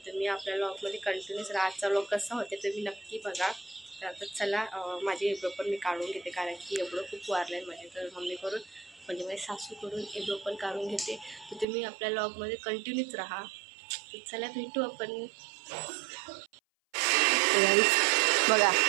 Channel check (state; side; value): drops out; left; at 11.7 s